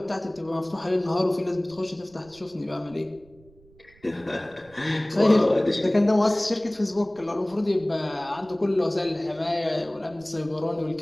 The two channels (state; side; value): noise; right; rumble, 27 dB below the sound